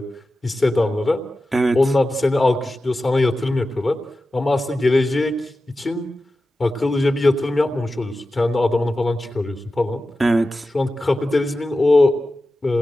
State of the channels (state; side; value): normal; both; correlation 0.93